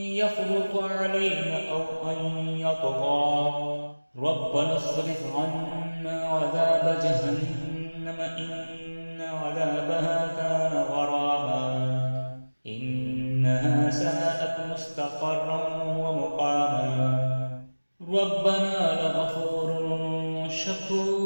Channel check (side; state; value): both; inverted; correlation -1.00